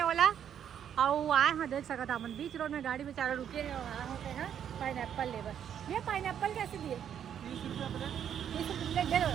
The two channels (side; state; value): left; quieter; 9.1 dB